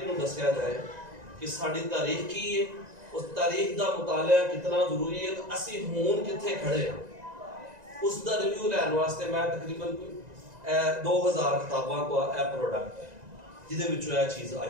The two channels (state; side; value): late; left; 1.9 ms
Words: में दसिया जाए कि साड़ी तारीख की है, उस तारीख का मुताला कितना जरूरी है, तो असी हुण किथे खड़े हैं उसका रिव्यू लैन वास्ते मैं तकरीबन 2000 किताबों को प्रोडक्ट है जिहदे चीज आई